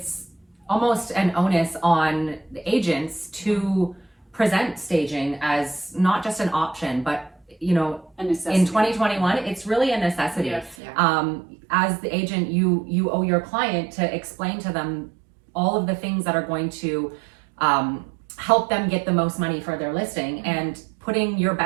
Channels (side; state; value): left; drops out; at 10.8 s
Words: almost an onus on the agents to present staging as not just an option, but A necessity. in 2021, it's really a necessity. Yes. As the agent, you owe your client to explain to them all of the things that are going to help them get the most money for their listing, and putting your